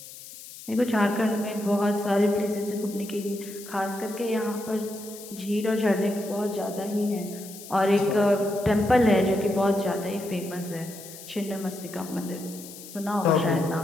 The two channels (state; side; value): noise; left; hiss, 15 dB below the sound